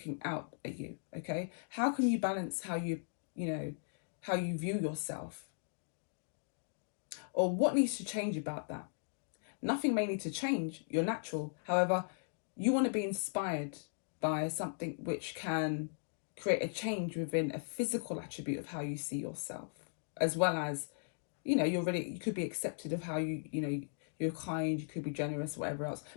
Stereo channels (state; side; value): silent; right; digital silence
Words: out at you. Okay, how can you balance how you view yourself? Or what needs to change about that? Nothing may need to change. You're natural. However, you want to be inspired by something which can create a change within a physical attribute of how you see yourself, as well as, you know, you could be accepted of how you're kind, you could be generous, whatever else.